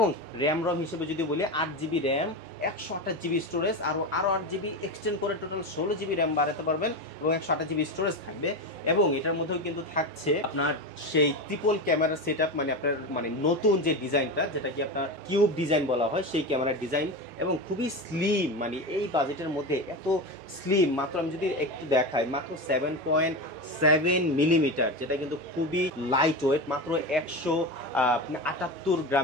র্যাম রম হিসেবে যদি বলি 8 জিবি র্যাম, 128 জিবি স্টোরেজ, আরও 8 জিবি এক্সটেন্ড করে টোটাল 16 জিবি র্যাম বাড়াতে পারবেন, এবং 128 জিবি স্টোরেজ থাকবে। এবং এটার মধ্যেও কিন্তু থাকছে আপনার সেই ট্রিপল ক্যামেরা সেট আপ, মানে আপনার মানে নতুন যে ডিজাইনটা, যেটা কি আপনার কিউব ডিজাইন বলা হয়, সেই ক্যামেরার ডিজাইন, এবং খুবই স্লিম, মানে এই বাজেটের মধ্যে এত স্লিম, মাত্র আমি যদি একটু দেখাই মাত্র 7.7 মিলিমিটার, যেটা কিন্তু খুবই লাইট ওয়েট, মাত্র 178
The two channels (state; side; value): normal; both; correlation 0.21